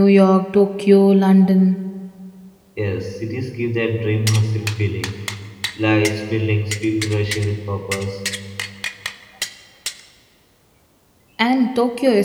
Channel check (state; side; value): identical; both; correlation 1.00